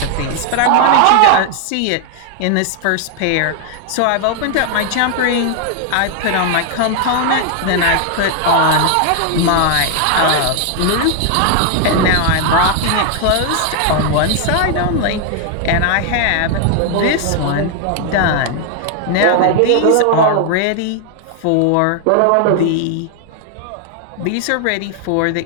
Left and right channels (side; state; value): both; different; correlation 0.00